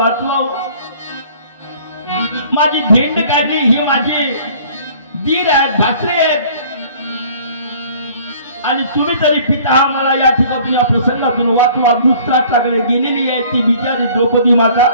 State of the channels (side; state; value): both; inverted; correlation -0.52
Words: माझी झेंड काढली, ही माझे दीर आहेत, भासरे आहेत आणि तुम्ही तरी पिता मला या ठिकाणी या प्रसंगातून वाचवा. धृतराष्ट्राकडे गेलेली आहे ती बिचारी द्रौपदी माता.